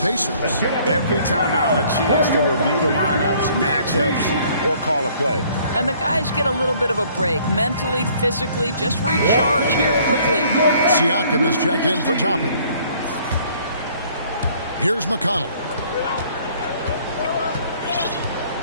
Every timeout, a chance to review the lineups, matchups, or call a play. And the guys get a little bit of a break. Mentally, physically, just recharge here quickly. Siakam is checked in for Toppin. Here's McConnell.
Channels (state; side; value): inverted; both; correlation -0.59